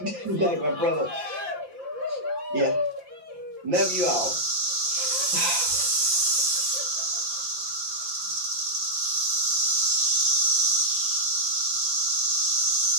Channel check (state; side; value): late; left; 5.8 ms